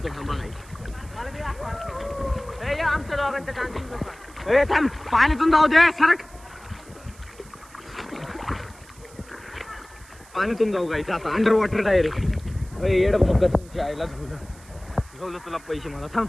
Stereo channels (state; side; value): noise; right; hiss, 24 dB below the sound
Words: थांबा. ए थांब पाण्यातून जाऊ दे. सरक पाण्यातून जाऊ गायचं आता अंडर वॉटर डायरेक्ट. येड भोका तुमच्या आईला झोलं तुला पैसे मला. थांब